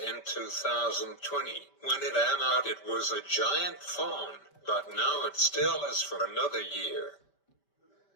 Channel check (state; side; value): late; right; 5.1 ms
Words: 2020, when it came out, it was a giant phone, but now it still is for another year.